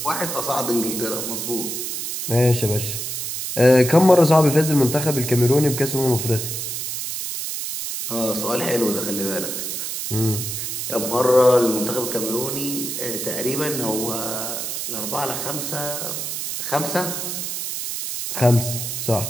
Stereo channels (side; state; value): right; noise; hiss, 4 dB below the sound